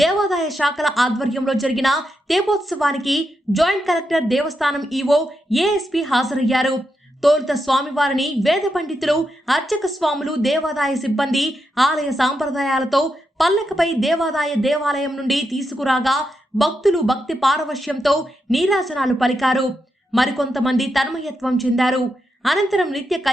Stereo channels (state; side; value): normal; both; correlation 0.84